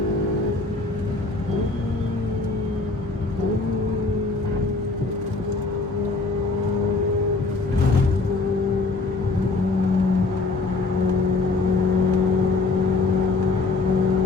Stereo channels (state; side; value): quieter; right; 3.7 dB